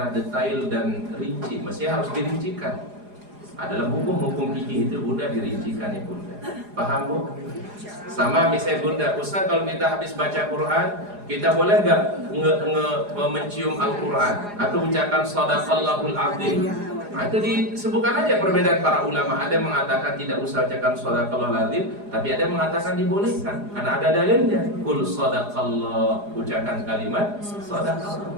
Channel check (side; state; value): left; late; 4.9 ms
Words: detail dan rinci. Mestinya harus dirincikan. Adalah hukum-hukum fikih itu bunda dirincikan ya bunda. Paham bu? Sama misalnya bunda, Ustaz kalau kita habis baca Quran, kita boleh nggak mencium Al-Quran atau ucapkan Shadaqallahul Azim? Nah, itu disebutkan aja perbedaan para ulama. Ada yang mengatakan tidak usah ucapkan Shadaqallahul Azim, tapi ada yang mengatakan dibolehkan karena ada dalilnya. Qul Shadaqallah, ucapkan kalimat